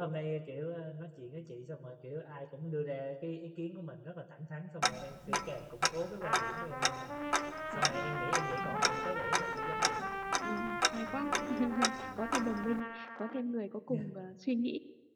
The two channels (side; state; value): both; identical; correlation 1.00